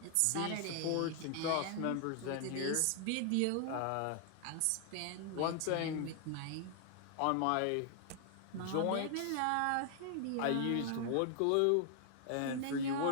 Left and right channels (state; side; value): different; both; correlation 0.00